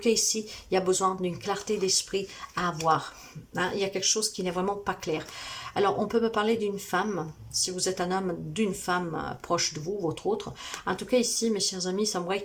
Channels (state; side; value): identical; both; correlation 1.00